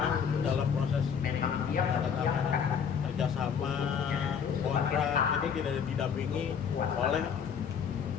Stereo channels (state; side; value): quieter; right; 7.2 dB